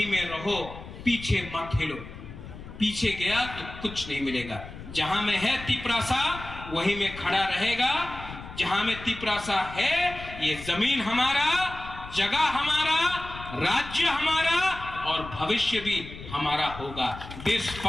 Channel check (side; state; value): left; noise; rumble, 13 dB below the sound